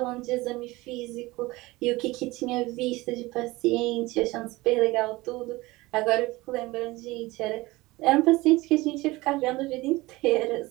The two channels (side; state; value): left; quieter; 20.6 dB